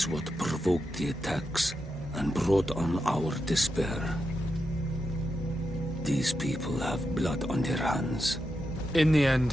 what provoked the attacks and brought on our despair. These people have blood on their hands. In the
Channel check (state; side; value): normal; both; correlation 0.87